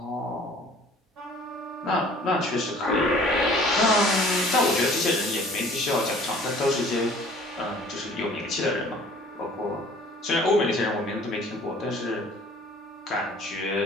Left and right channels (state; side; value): normal; both; correlation 0.51